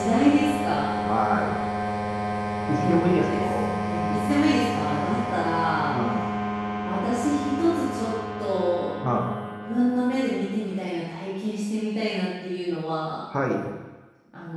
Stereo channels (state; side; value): identical; both; correlation 1.00